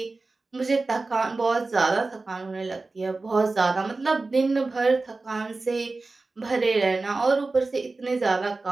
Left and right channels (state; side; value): quieter; left; 3.5 dB